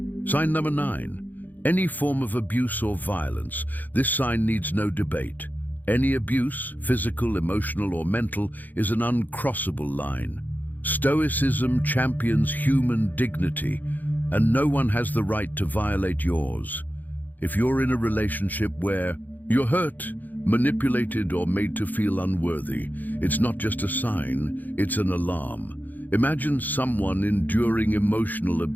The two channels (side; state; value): right; late; 0.084 ms